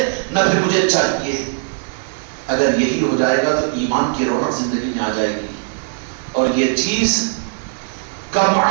نہ پھر مجھے چاہیے. اگر یہی ہو جائے گا تو ایمان کی رونق زندگی میں آ جائے گی، اور یہ چیز کم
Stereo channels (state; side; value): silent; left; digital silence